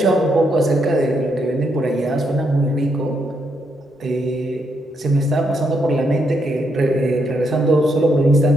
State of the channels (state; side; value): normal; both; correlation 0.78